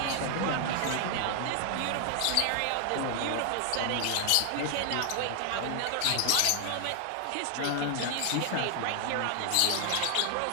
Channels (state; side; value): different; both; correlation 0.00